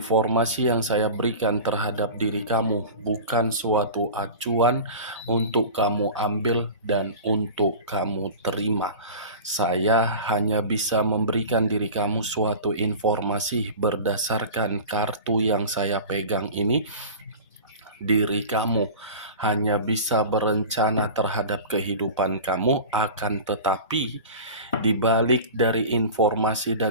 yang saya berikan terhadap diri kamu bukan suatu acuan untuk kamu ambil dan untuk kamu terima. Saya hanya bisa memberikan diri kamu suatu informasi berdasarkan kartu yang saya pegang ini. Diri kamu hanya bisa berencana terhadap kehidupan kamu, akan tetapi di balik dari informasi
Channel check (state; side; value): inverted; both; correlation -0.34